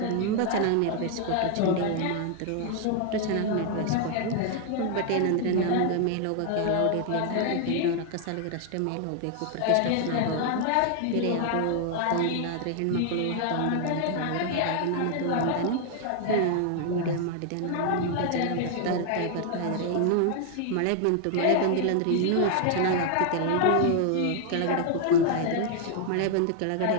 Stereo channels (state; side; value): different; both; correlation 0.00